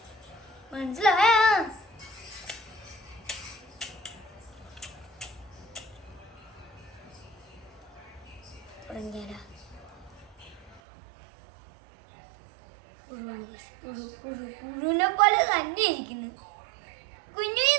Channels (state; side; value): drops out; left; at 10.8 s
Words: മനസ്സിലായ? തുടങ്ങിയാലോ? പുഴുവിനെ പോലെ തന്നെ ഇരിക്കുന്നു. കുഞ്ഞു